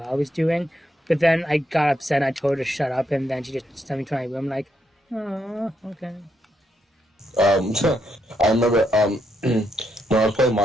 I was doing. But then I got upset and I told her to shut up, and then she just sent me to my room like, oh, okay. I remember when I was playing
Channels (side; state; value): both; normal; correlation 0.78